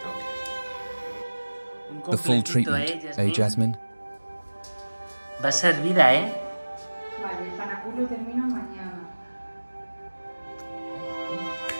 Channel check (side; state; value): both; inverted; correlation -1.00